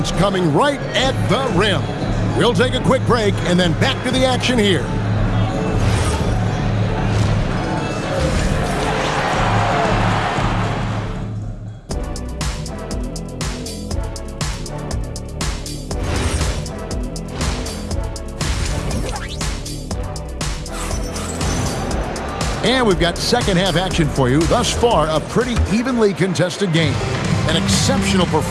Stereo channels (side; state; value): both; identical; correlation 1.00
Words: coming right at the rim. We'll take a quick break and then back to the action here. And we've got second half action for you. Thus far, a pretty evenly contested game. An exceptional